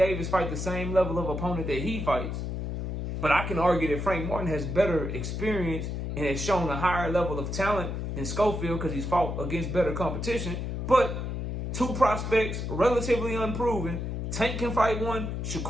fight the same level of opponent that he fights. But I can argue that Frank Martin has better experience and has shown a higher level of talent than Schofield because he's fought against better competition. But two prospects, relatively unproven. Tank can fight one,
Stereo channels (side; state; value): left; noise; hum, 3 dB below the sound